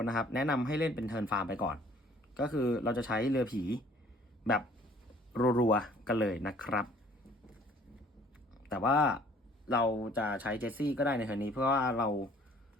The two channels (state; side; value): normal; both; correlation 0.56